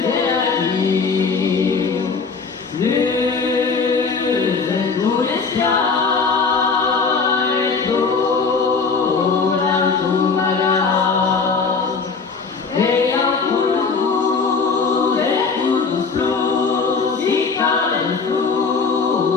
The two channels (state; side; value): quieter; right; 4.9 dB